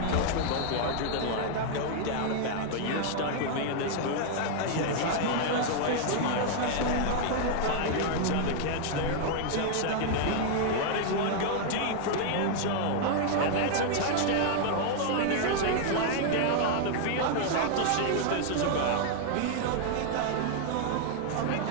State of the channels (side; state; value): both; different; correlation 0.00